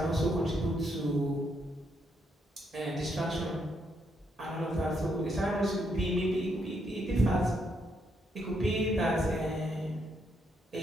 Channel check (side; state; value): both; normal; correlation 0.76